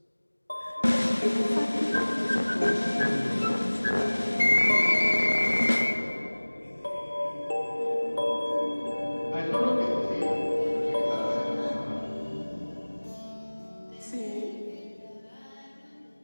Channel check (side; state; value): both; inverted; correlation -1.00